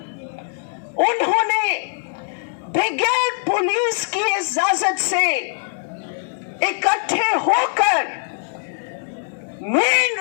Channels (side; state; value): right; silent; digital silence